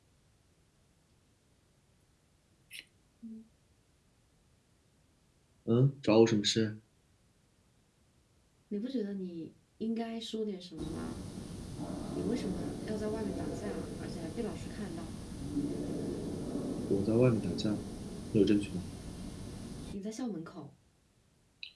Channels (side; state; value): both; identical; correlation 1.00